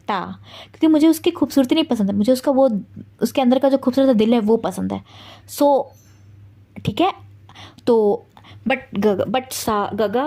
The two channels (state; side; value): identical; both; correlation 1.00